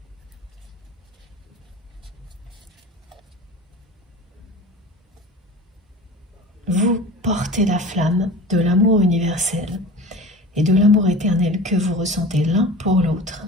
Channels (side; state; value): both; normal; correlation 0.36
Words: Vous portez la flamme de l'amour universel et de l'amour éternel que vous ressentez l'un pour l'autre.